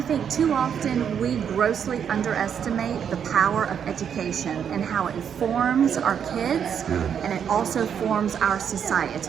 think too often we grossly underestimate the power of education and how it forms our kids and it also forms our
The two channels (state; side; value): quieter; left; 8.0 dB